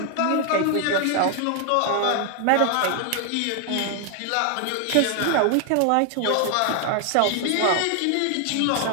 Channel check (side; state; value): both; different; correlation 0.00